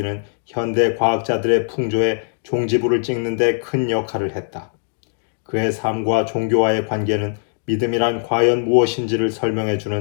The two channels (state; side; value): silent; right; digital silence